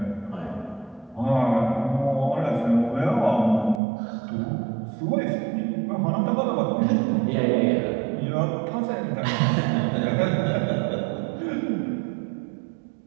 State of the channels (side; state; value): left; drops out; at 3.8 s